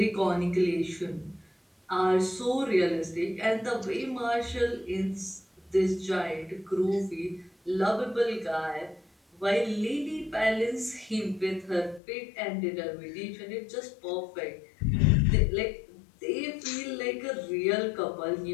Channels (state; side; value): drops out; right; at 12.0 s